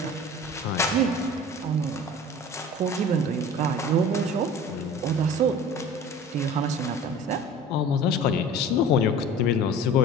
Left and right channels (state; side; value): normal; both; correlation 0.40